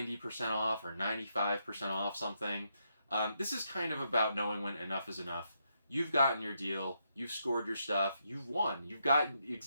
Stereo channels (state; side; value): inverted; both; correlation -0.80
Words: off or 95% off something, this is kind of about knowing when enough is enough. You've gotten your deal. You've scored your stuff. You've won. You've gotten